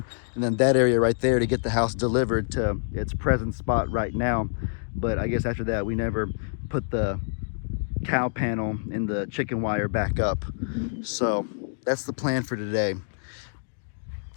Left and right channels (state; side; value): silent; right; digital silence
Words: and then that area right there to get the house delivered to its present spot right now. But I guess after that we never put the cow panel and the chicken wire back up. So that's the plan for today.